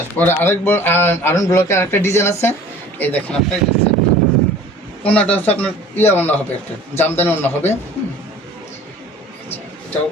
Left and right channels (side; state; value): both; normal; correlation 0.46